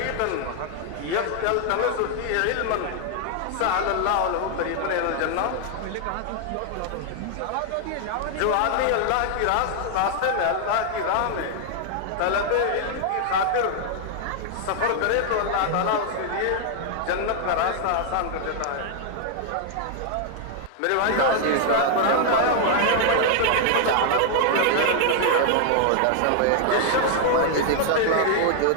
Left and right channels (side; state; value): both; different; correlation 0.00